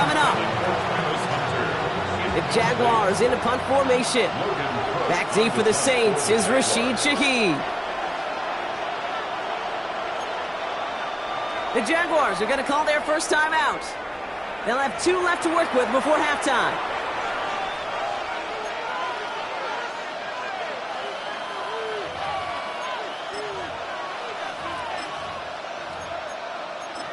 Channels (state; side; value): identical; both; correlation 1.00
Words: up. The Jaguars in a punt formation. Back deep for the Saints is Rashid Shaheed. The Jaguars are going to call their first time out. They'll have 2 left to work with before halftime.